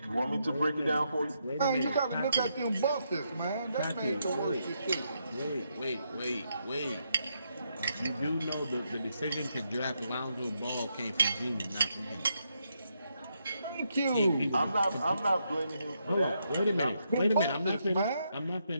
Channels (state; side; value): inverted; both; correlation -0.79